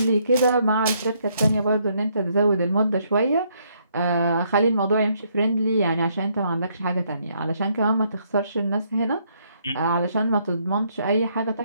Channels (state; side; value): inverted; both; correlation -0.71